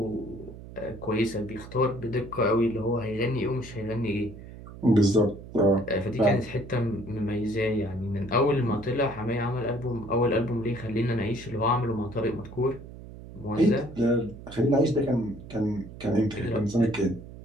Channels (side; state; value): right; noise; hum, 15 dB below the sound